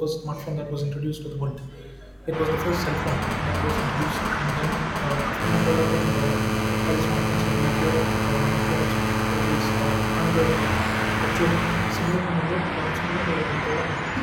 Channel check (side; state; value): both; identical; correlation 1.00